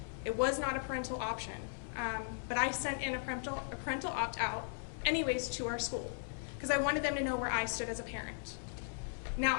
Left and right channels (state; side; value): silent; right; digital silence